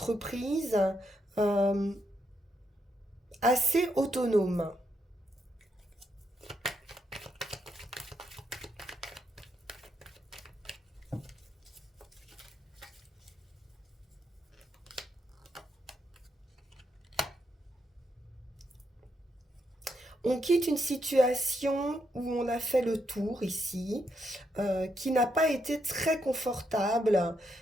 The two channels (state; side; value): normal; both; correlation 0.79